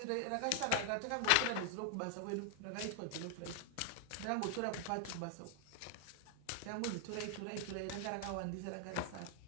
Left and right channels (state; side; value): different; both; correlation 0.00